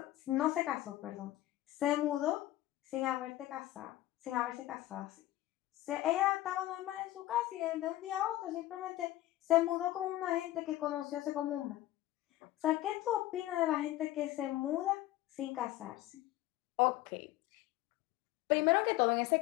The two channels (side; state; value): right; quieter; 15.6 dB